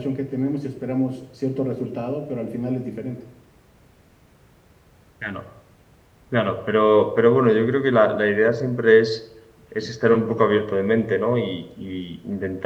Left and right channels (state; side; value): identical; both; correlation 1.00